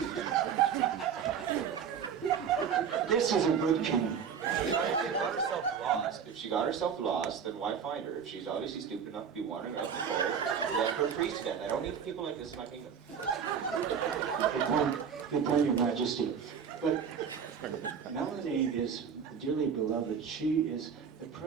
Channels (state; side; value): quieter; left; 7.2 dB